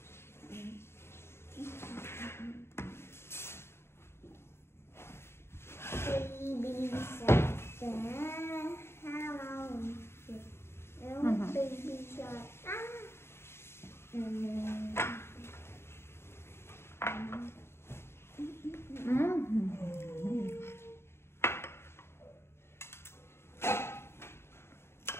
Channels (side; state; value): right; late; 0.12 ms